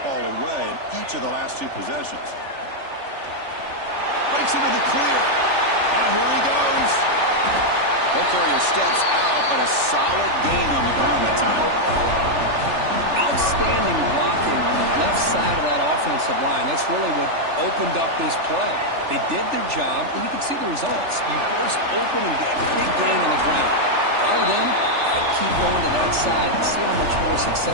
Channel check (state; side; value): late; left; 3.4 ms